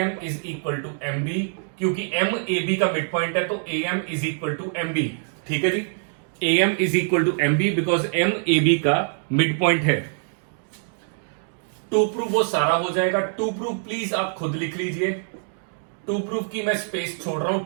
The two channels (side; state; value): left; silent; digital silence